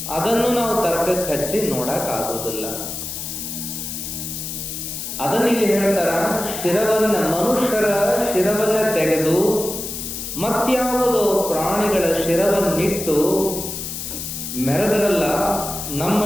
ಅದನ್ನು ನಾವು ತರ್ಕಕ್ಕೆ ಹಚ್ಚಿ ನೋಡಕ್ಕಾಗೋದಿಲ್ಲ. ಅದನ್ನ ಇಲ್ಲಿ ಹೇಳ್ತಾರ, ಶಿರವನ್ನ, ಮನುಷ್ಯರ ಶಿರವನ್ನ ತೆಗೆದು ಮತ್ಯಾವುದೋ ಪ್ರಾಣಿಗಳ ಶಿರವನ್ನಿಟ್ಟು ಮೆರೆದರಲ್ಲ ನಮ್ಮ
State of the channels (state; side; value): noise; left; hiss, 6 dB below the sound